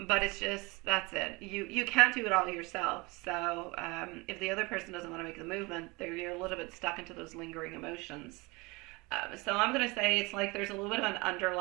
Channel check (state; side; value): quieter; left; 25.1 dB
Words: but it's just, that's it. You can't do it all yourself. So if the other person doesn't want to make the movement, you're a little bit stuck into those lingering emotions. So I'm going to say it's like there's a little bit of an